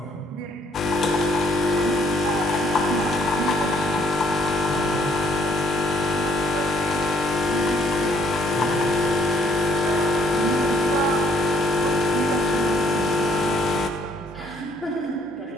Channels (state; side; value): normal; both; correlation 0.65